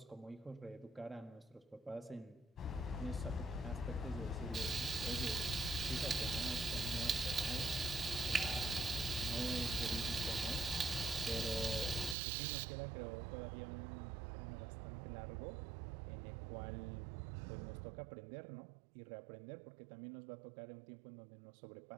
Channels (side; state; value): left; drops out; at 12.2 s